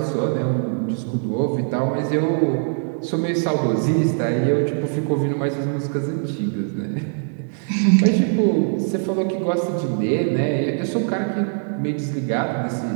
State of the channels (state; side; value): silent; left; digital silence